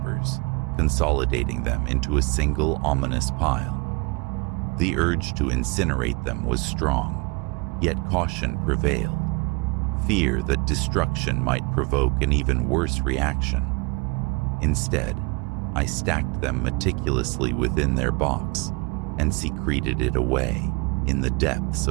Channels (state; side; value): quieter; left; 28.7 dB